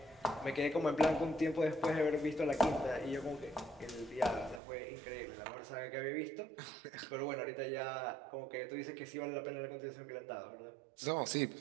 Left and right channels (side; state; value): left; drops out; at 4.6 s